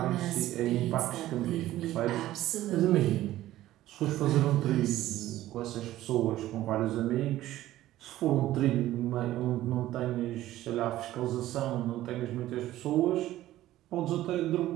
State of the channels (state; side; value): quieter; left; 14.7 dB